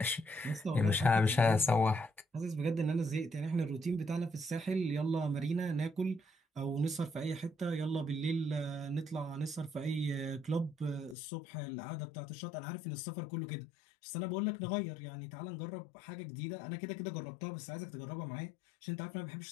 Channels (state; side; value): drops out; right; at 11.2 s